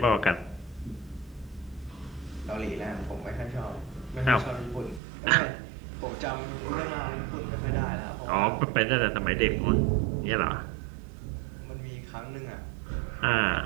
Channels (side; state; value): left; drops out; at 5.0 s